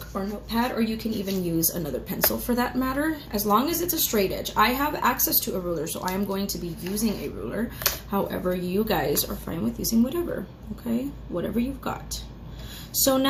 or notepad, or you can even use another pencil for that matter, as long as it's a straight edge. I have access to a ruler, so I am going to be using a ruler. However, you guys are fine with using whatever, okay? Whatever you've got. So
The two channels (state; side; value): identical; both; correlation 1.00